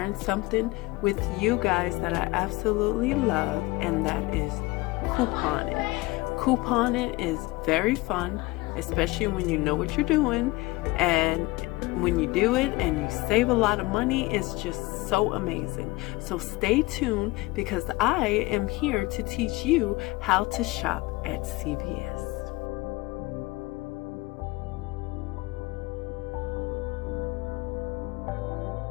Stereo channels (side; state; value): right; quieter; 21.8 dB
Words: something with you guys that I absolutely love, and that is couponing. Couponing is very fun, especially when you know what you're doing, and when you do it and you save a lot of money, it's just so amazing. So stay tuned because I am here to teach you how to shop at CVS.